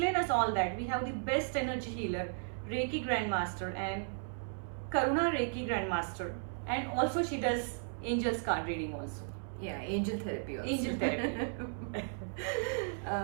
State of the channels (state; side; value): silent; left; 54 dB below the other